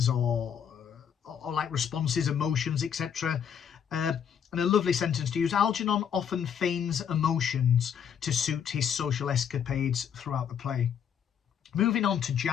or like responses, emotions, etc. And a lovely sentence to use: Algenon often feigns emotions to suit his social escapades throughout the play. Moving on to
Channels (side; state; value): right; quieter; 8.1 dB